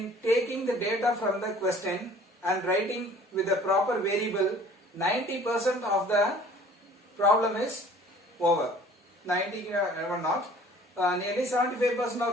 taking the data from the question and writing with the proper variable, 90% of the problem is over. 90 never not, nearly 75%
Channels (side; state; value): both; normal; correlation 0.51